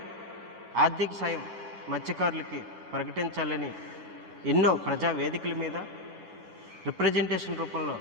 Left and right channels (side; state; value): left; late; 9.5 ms